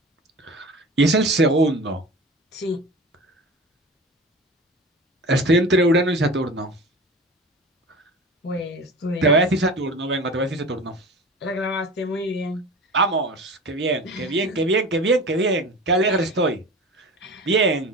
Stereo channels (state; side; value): normal; both; correlation 0.35